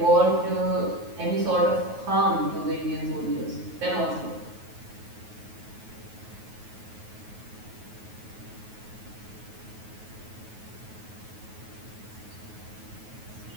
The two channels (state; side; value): late; left; 9.3 ms